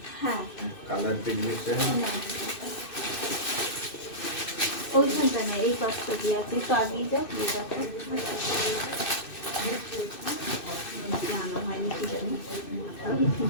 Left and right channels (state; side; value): late; right; 2.6 ms